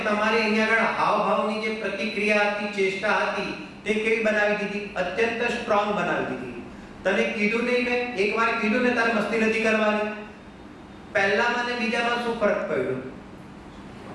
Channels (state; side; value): identical; both; correlation 1.00